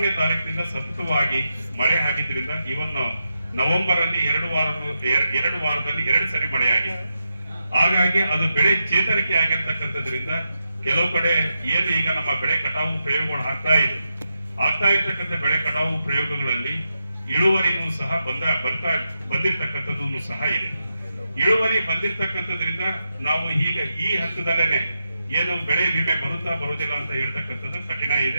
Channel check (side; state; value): both; inverted; correlation -0.86